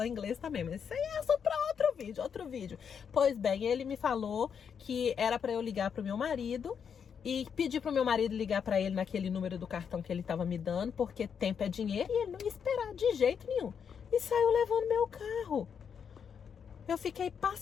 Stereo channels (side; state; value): right; quieter; 7.2 dB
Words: inglês também, mas isso aí é só pra outro vídeo. Pois bem, ele me falou que era pra eu ligar pro meu marido e pedir pro meu marido ligar pra ele naquele número do cartão que ele tava me dando, porque tempo é dinheiro e ele não ia esperar de jeito nenhum. E saiu levando meu carro. Eu fiquei